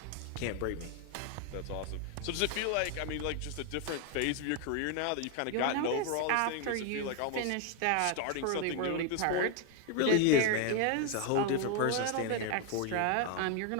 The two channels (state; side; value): different; both; correlation 0.01